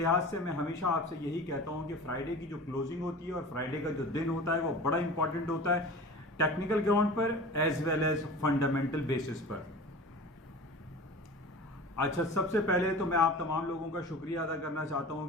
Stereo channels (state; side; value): normal; both; correlation 0.37